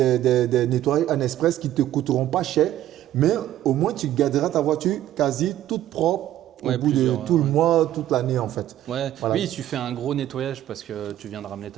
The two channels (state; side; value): quieter; left; 12.7 dB